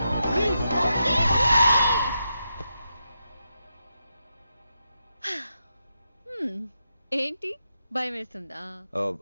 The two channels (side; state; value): both; inverted; correlation -0.85